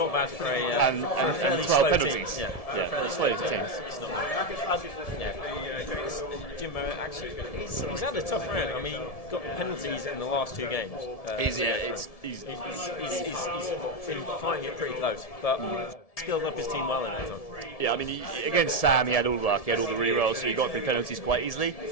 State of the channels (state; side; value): late; right; 1.7 ms